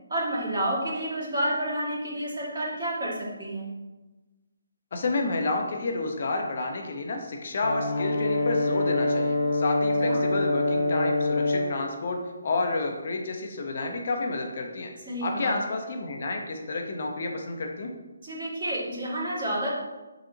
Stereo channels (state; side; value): inverted; both; correlation -0.79